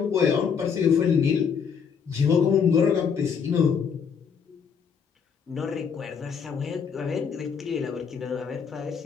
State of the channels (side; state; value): right; quieter; 6.6 dB